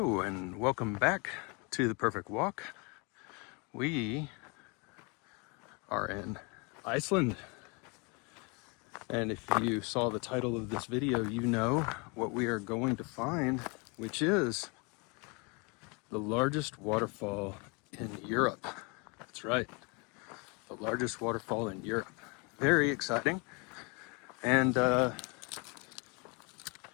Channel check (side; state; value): right; quieter; 31.1 dB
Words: and welcome back to The Perfect Walk. We are in Iceland, and if you saw the title of this video, you know what we are going to find, which is the largest waterfall in Europe. That's right, the largest waterfall in Europe. Very exciting, and as